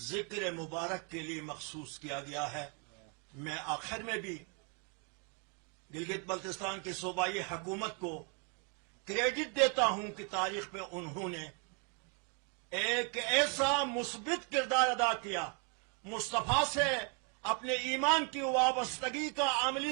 ذکر مبارک کے لیے مخصوص کیا گیا ہے. میں آخر میں بھی گلگت بلتستان کی صوبائی حکومت کو کریڈٹ دیتا ہوں کہ تاریخ میں انہوں نے ایک ایسا مثبت کردار ادا کیا، مصطفیٰ سے اپنے ایمان کی وابستگی کا عملی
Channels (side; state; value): left; quieter; 37.4 dB